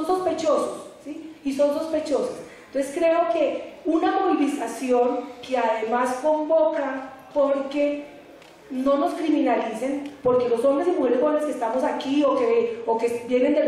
sospechosos, ¿sí? Y son sospechosos. Entonces creo que una movilización que además convoca, porque no nos criminalicen, porque los hombres y mujeres jóvenes que estamos aquí o que vienen de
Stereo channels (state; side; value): identical; both; correlation 1.00